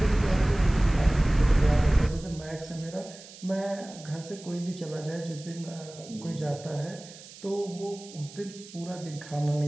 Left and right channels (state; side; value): noise; right; hiss, 18 dB below the sound